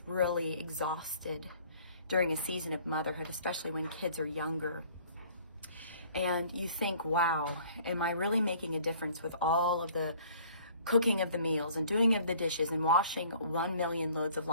really exhausted during a season of motherhood, especially when kids are younger. And you think, wow, am I really making a difference with all of the cooking of the meals and doing of the dishes and washing 1 million loads of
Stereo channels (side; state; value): both; inverted; correlation -0.54